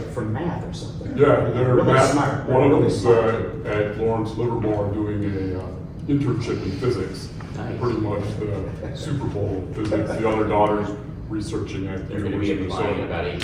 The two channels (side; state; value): both; identical; correlation 1.00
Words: for math or something. Yeah, they're really math. smart. One of Really them's smart. at Lawrence Livermore doing a internship in physics. Nice. Pretty much the Super Bowl physics. The other daughter's researching at the They're gonna be University of applying in Minnesota. about